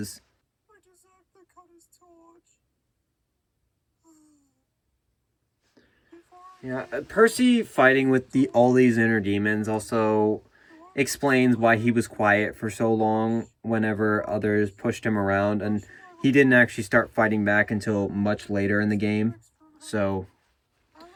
Yeah, Percy fighting with all these inner demons also explains why he was quiet for so long whenever others pushed him around, and he didn't actually start fighting back until much later in the game. So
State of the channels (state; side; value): identical; both; correlation 1.00